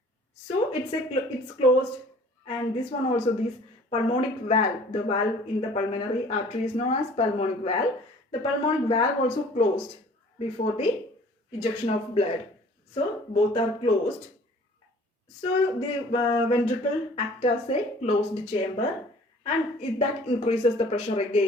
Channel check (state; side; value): normal; both; correlation 0.51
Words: So it's closed, and this one also, this pulmonic valve, the valve in the pulmonary artery is known as pulmonic valve. The pulmonic valve also closed before the ejection of blood. So both are closed. So the ventricle acts as a closed chamber, and that increases the pressure